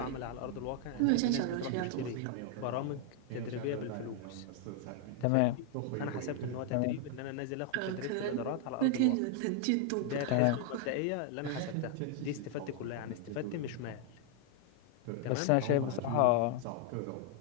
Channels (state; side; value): different; both; correlation 0.00